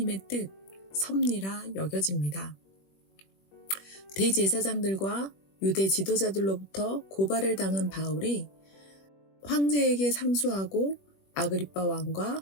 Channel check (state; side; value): late; right; 21 ms